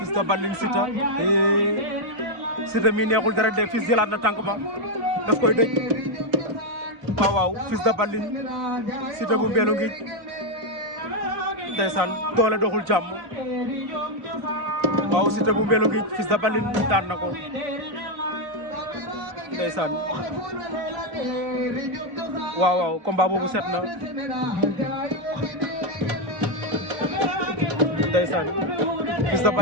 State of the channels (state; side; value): late; left; 4.0 ms